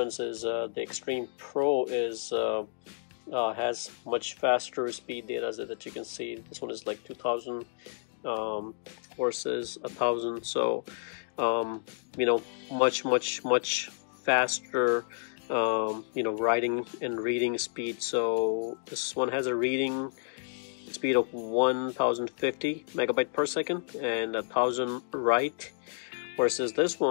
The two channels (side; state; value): right; silent; digital silence